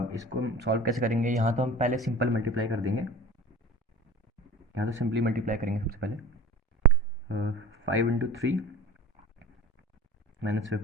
इसको हम सॉल्व कैसे करेंगे। यहाँ तो हम पहले सिंपल मल्टीप्लाई कर देंगे। यहाँ तो सिंपली मल्टीप्लाई करेंगे सबसे पहले। 5 × 3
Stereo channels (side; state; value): both; normal; correlation 0.39